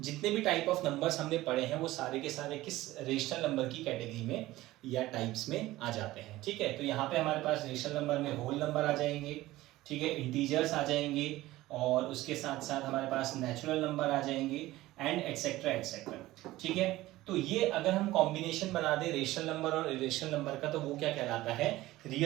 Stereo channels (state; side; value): quieter; left; 17.1 dB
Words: जितने भी टाइप ऑफ नंबर्स हमने पढ़े हैं वो सारे के सारे किस रेशनल नंबर की कैटेगरी में या टाइप्स में आ जाते हैं। ठीक है, तो यहाँ पे हमारे पास रेशनल नंबर में होल नंबर आ जाएंगे, ठीक है, इंटीजर्स आ जाएंगे, और उसके साथ साथ हमारे पास नेचुरल नंबर आ जाएंगे एंड एक्सेट्रा एक्सेट्रा। ठीक है, तो ये अगर हम कॉम्बिनेशन बना दें रेशनल नंबर और इरेशनल नंबर का, तो वो क्या कहलाता है,